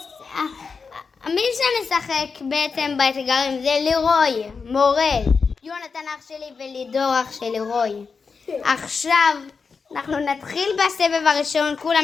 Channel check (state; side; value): quieter; right; 5.1 dB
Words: מי שמשחק בעצם באתגרים זה לירוי, מורל, יונתן אח שלי ולידור אח של לירוי. עכשיו אנחנו נתחיל בסבב הראשון,